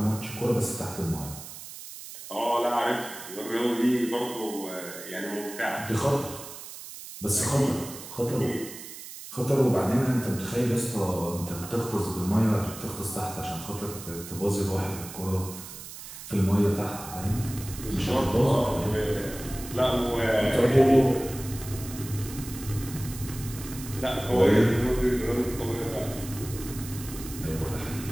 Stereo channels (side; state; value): right; noise; hiss, 13 dB below the sound